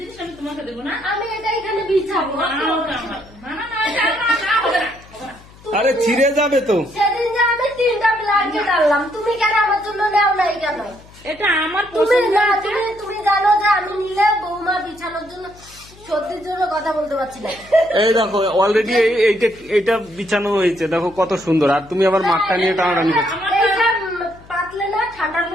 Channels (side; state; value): left; noise; hum, 23 dB below the sound